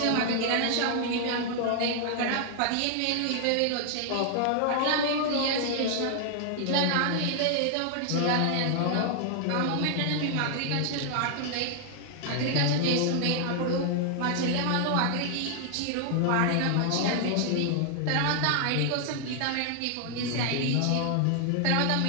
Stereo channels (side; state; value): both; different; correlation 0.00